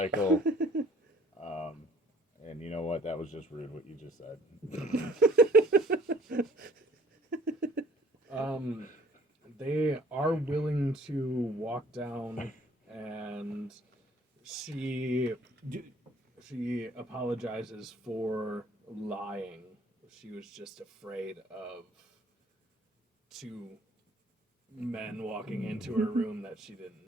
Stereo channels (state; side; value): normal; both; correlation 0.56